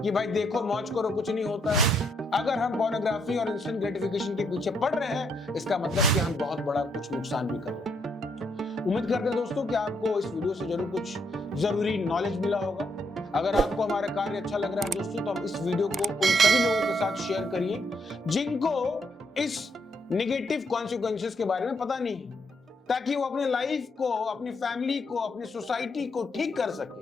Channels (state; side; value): normal; both; correlation 0.75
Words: कि भाई देखो मौज करो कुछ नहीं होता है। अगर हम पोर्नोग्राफी और इंस्टेंट ग्रेटिफिकेशन के पीछे पड़ रहे हैं, इसका मतलब कि हम बहुत बड़ा कुछ नुकसान भी कर रहे हैं। उम्मीद करते हैं दोस्तों कि आपको इस वीडियो से जरूर कुछ जरूरी नॉलेज मिला होगा। अगर आपको हमारा कार्य अच्छा लग रहा है दोस्तों, तो आप इस वीडियो को उन सभी लोगों के साथ शेयर करिए जिनको इस नेगेटिव कॉन्सिक्वेंसेस के बारे में पता नहीं है, ताकि वो अपने लाइफ को, अपनी फैमिली को, अपनी सोसाइटी को ठीक कर सके,